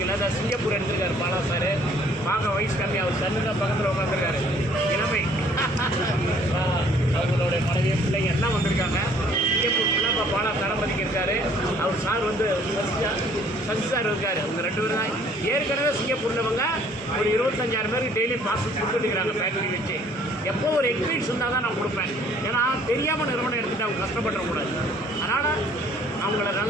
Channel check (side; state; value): both; normal; correlation 0.58